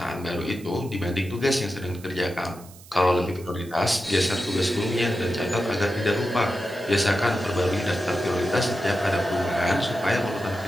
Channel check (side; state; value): right; noise; hiss, 21 dB below the sound